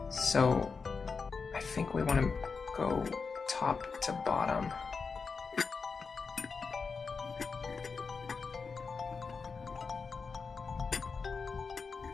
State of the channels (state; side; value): quieter; right; 5.0 dB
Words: So, I think we want to go top to bottom.